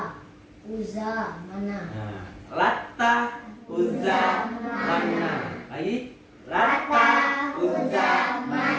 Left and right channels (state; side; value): identical; both; correlation 1.00